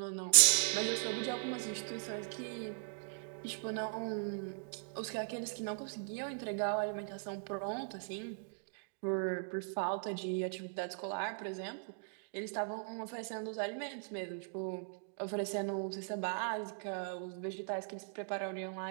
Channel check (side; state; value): left; silent; digital silence